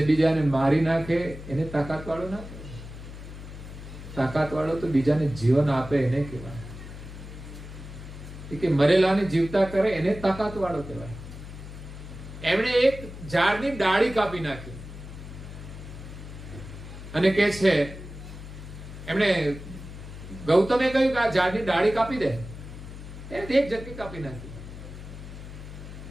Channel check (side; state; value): left; noise; hum, 12 dB below the sound